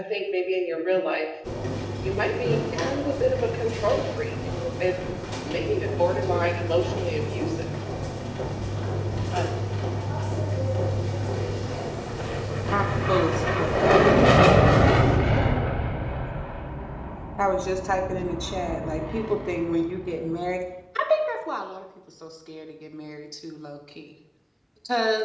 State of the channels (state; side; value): identical; both; correlation 1.00